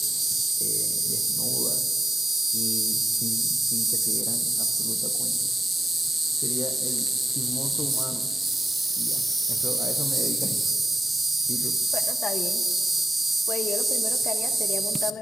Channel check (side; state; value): both; normal; correlation 0.90